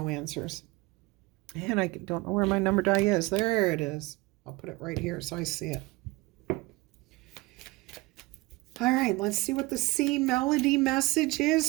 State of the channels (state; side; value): quieter; left; 22.1 dB